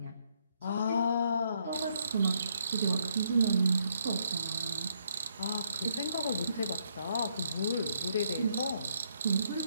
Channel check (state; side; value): inverted; both; correlation -0.73